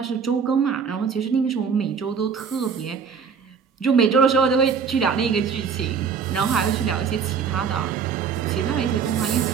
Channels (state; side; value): quieter; left; 6.3 dB